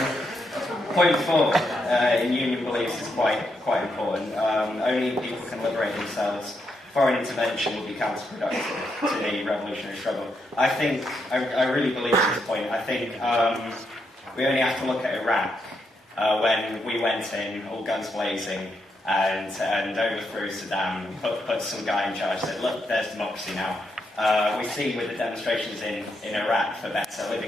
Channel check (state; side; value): normal; both; correlation 0.80